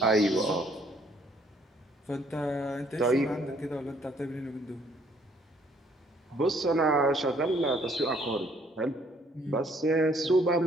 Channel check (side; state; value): both; normal; correlation 0.64